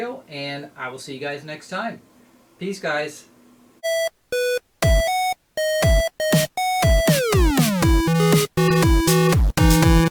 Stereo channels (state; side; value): identical; both; correlation 1.00